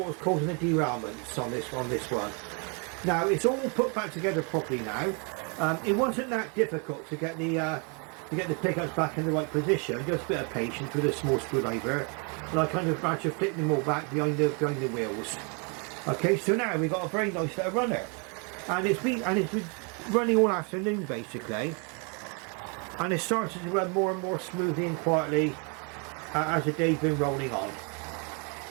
was causing the derailments on this one. Now it's all put back together properly now. It wasn't that difficult to get the pickups back in the right position, just a bit of patience with a small screwdriver, and I kind of managed to flip them all back behind the wheels. Okay, so now we've got a very nice little runner, and it's been running all afternoon basically, and it started to run more and more smoothly and quietly as the day's been rolling on.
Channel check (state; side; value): quieter; left; 35.3 dB